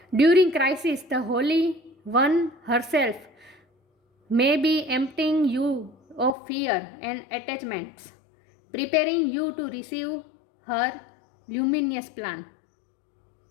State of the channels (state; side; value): drops out; right; at 6.4 s